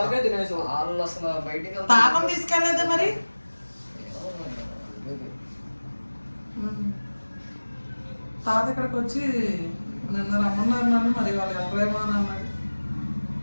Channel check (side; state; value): both; inverted; correlation -1.00